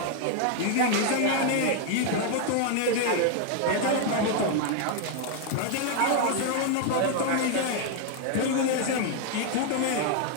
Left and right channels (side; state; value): both; different; correlation 0.00